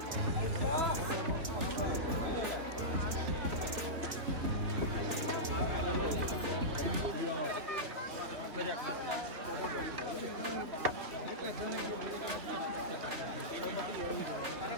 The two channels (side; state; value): left; late; 3.4 ms